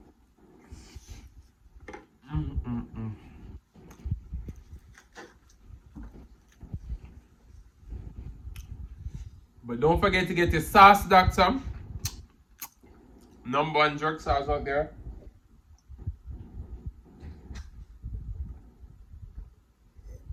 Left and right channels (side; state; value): both; identical; correlation 1.00